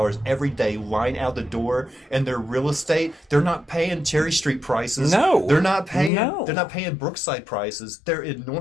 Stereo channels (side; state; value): right; drops out; at 6.1 s